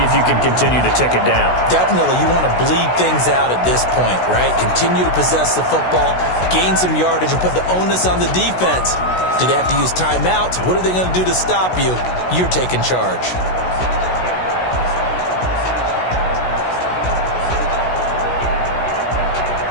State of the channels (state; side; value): late; right; 16 ms